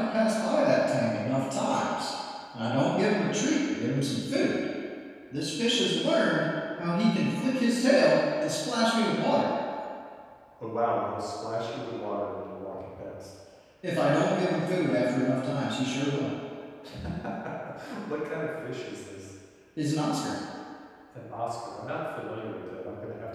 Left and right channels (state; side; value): identical; both; correlation 1.00